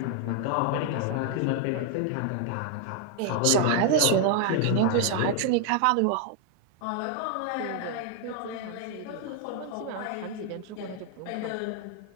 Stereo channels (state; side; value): different; both; correlation 0.00